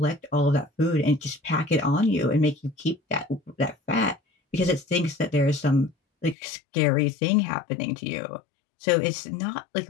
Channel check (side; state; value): right; drops out; at 6.4 s